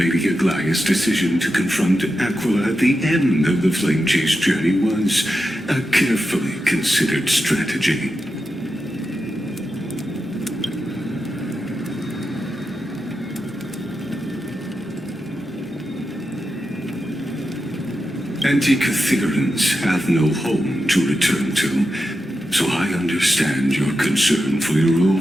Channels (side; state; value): both; normal; correlation 0.89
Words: Aglaya's decision to confront Aquila at the end of the Flame Chase journey was a carefully considered strategy. Antikytherans have no home to return to. so I understand your concern for your